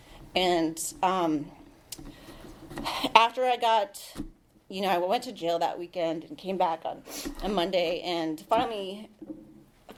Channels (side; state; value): both; identical; correlation 1.00